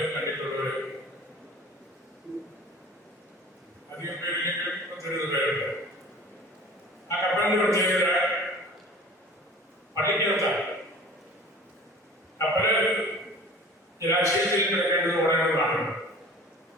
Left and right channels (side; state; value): both; normal; correlation 0.43